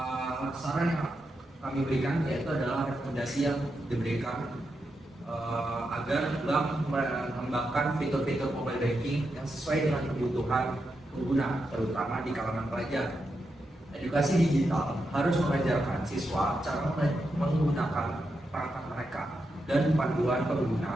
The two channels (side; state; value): both; normal; correlation 0.86